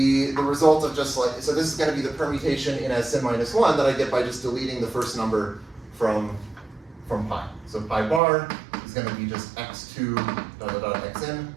the result of just like, so this is going to be the permutation in Sn minus 1 that I get by just deleting the first number from pi. So pi bar is going to be just x2 xn.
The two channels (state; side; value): drops out; left; at 8.2 s